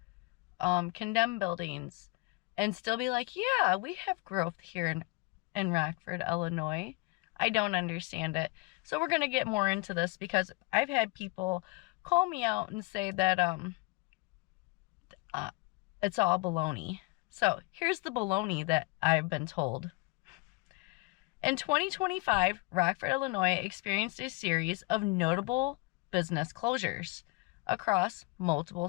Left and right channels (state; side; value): quieter; right; 25.8 dB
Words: buildings, and still be like, yeah, we have growth here in Rockford, Illinois? I don't understand it. So we're going to get more into this because I've had people call me out and say that it's all baloney. So here's the baloney that I've been told. In 2025, Rockford, Illinois experienced a series of notable business closures across multiple